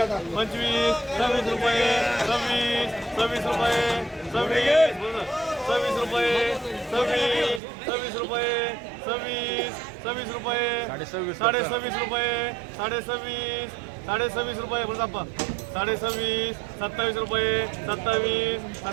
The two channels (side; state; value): left; drops out; at 7.6 s